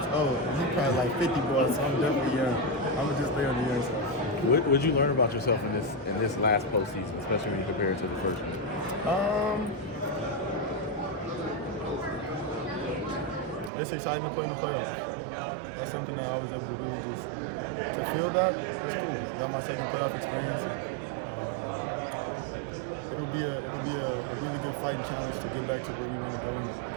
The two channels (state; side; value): drops out; left; at 13.7 s